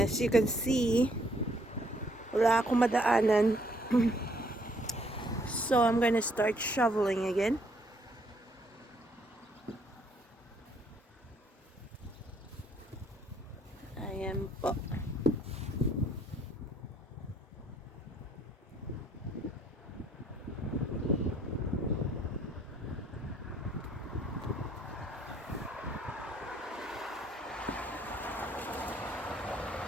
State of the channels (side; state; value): both; normal; correlation 0.66